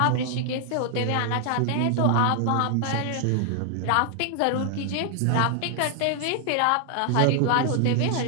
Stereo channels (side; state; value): both; different; correlation 0.00